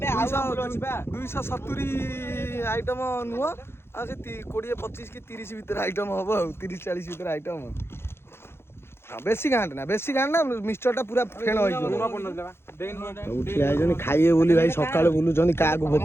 270 ଆଇଟମ ନୁହଁ ଆଉ ସେ 20-25 କି 30 ଭିତରେ ଆଇଟମ ହବ ଆଉ 30-40 ଭିତରେ ଆଇଟମ ବେଶୀ ଗାଁଟ ନା ମିକ୍ସଚରଟା ପୁରା ଫେଣ ହେଇଯିବ ସବୁ ଠିଆ ହେଇଛନ୍ତି ଖାଇବେ ବୋଲି ଭାଇ ସକାଳୁ ବୁଲୁଛନ୍ତି କାହାକୁ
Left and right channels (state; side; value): late; right; 0.12 ms